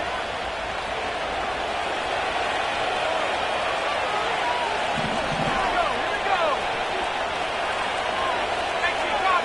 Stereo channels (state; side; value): identical; both; correlation 1.00